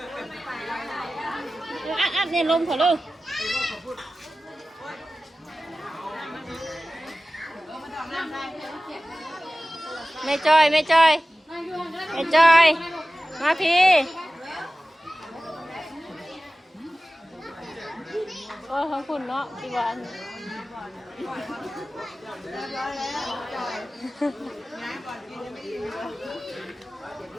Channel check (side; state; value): both; normal; correlation 0.96